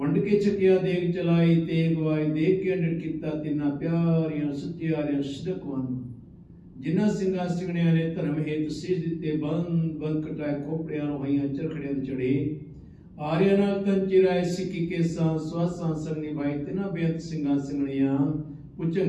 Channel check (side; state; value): both; identical; correlation 1.00